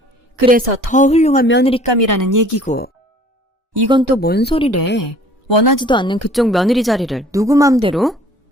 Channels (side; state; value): both; normal; correlation 0.51